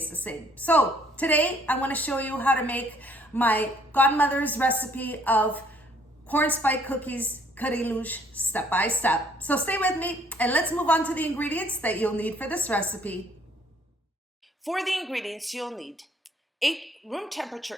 the same. So today I want to show you how to make my godmother's recipe of corn spike cookies Carrilhos step by step. So stay with me and let's move on to the ingredients that you'll need for this recipe. For the ingredients you'll need 8 room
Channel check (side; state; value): both; normal; correlation 0.63